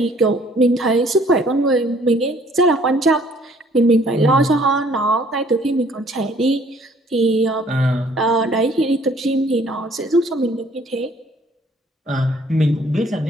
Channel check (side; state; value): both; normal; correlation 0.59